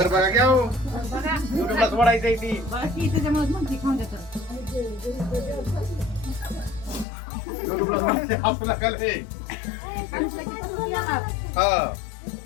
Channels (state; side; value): drops out; right; at 7.1 s